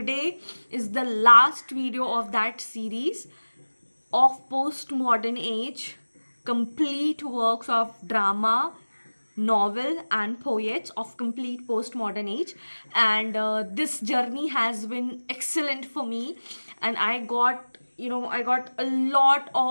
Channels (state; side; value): inverted; both; correlation -1.00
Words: is the last video of that series of Postmodern Age, complete works of drama, novel and poets of complete postmodern age. And this journey has been excellent for me, and I got a lot